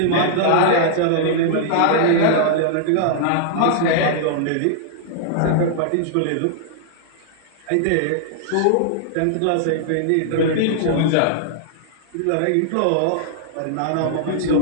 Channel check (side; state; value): both; different; correlation -0.01